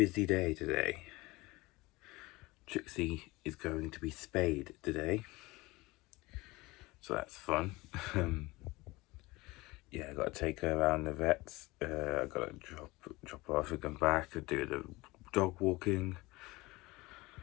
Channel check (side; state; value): right; quieter; 21.6 dB